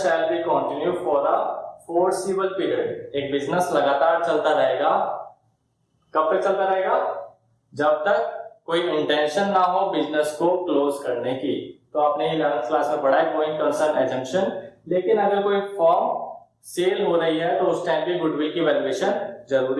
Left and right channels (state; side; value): identical; both; correlation 1.00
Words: shall be continue for a forcible period, एक बिजनेस लगातार चलता रहेगा, कब तक चलता रहेगा, जब तक कोई इंटेंशन ना हो बिजनेस को क्लोज करने की। तो आपने 11th क्लास में पढ़ा है गोइंग कंसर्न एजम्पशन। लेकिन अगर कोई फर्म सेल हो रही है तो उस टाइम पे गुडविल की वैल्यूएशन